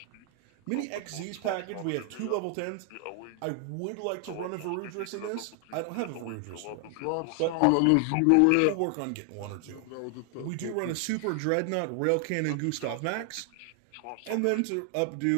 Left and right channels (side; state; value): both; different; correlation 0.00